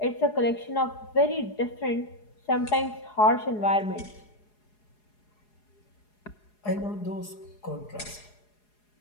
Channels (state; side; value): late; right; 4.8 ms